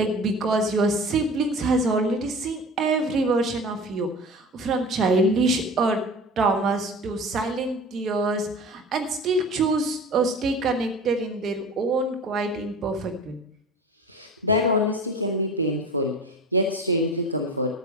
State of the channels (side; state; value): both; normal; correlation 0.37